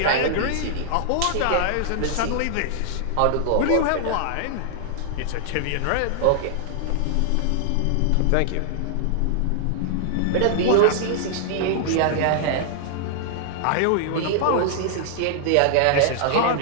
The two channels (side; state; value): both; different; correlation -0.01